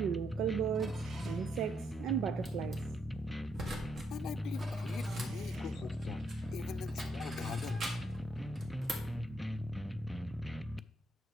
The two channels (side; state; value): both; normal; correlation 0.76